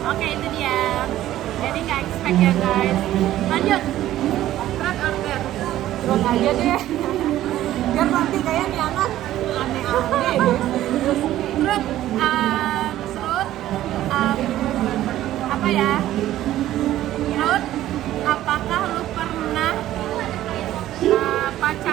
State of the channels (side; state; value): left; quieter; 13.7 dB